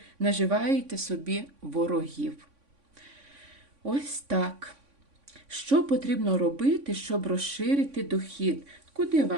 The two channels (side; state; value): left; late; 3.5 ms